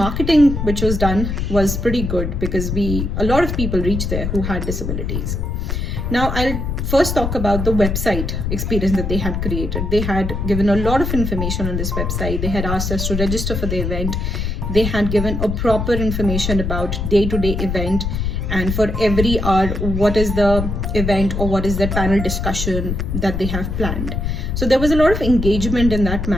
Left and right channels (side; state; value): left; noise; rumble, 2 dB below the sound